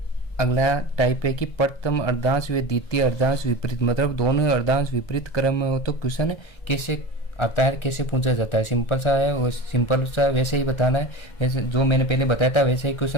अगला टाइप है कि प्रथम अर्धांश व द्वितीय अर्धांश विपरीत, मतलब दोनों अर्धांश विपरीत क्रम में हो तो क्वेश्चन कैसे आता है, कैसे पूछा जाता है। सिंपल सा है, वो सिंपल सा वैसे ही बताना है, वैसे जो मैंने पहले बताया था वैसे ही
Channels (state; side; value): late; right; 1.4 ms